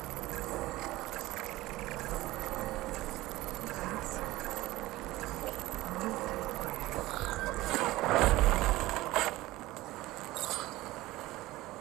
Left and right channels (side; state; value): left; quieter; 18.0 dB